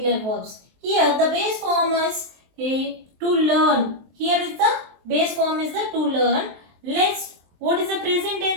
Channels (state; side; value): late; left; 23 ms